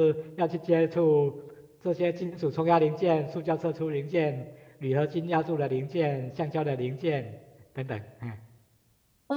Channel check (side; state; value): both; identical; correlation 1.00